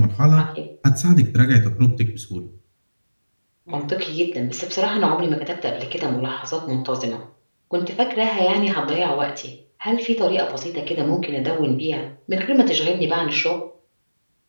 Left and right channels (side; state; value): both; inverted; correlation -1.00